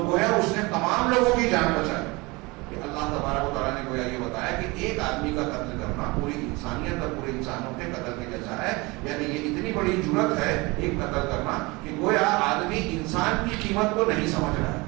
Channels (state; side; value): quieter; left; 24.7 dB